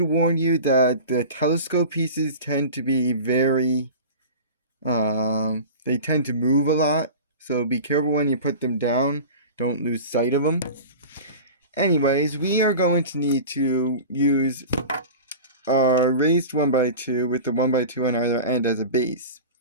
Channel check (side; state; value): both; inverted; correlation -0.34